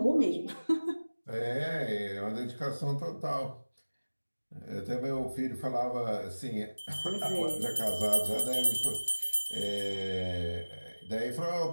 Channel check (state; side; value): inverted; both; correlation -1.00